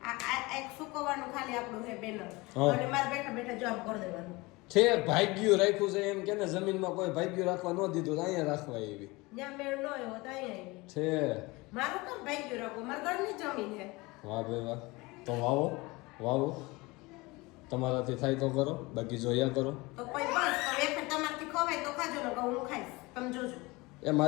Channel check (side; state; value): right; quieter; 23.2 dB